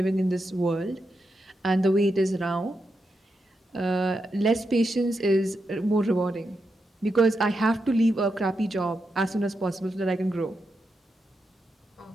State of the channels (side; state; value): both; normal; correlation 0.86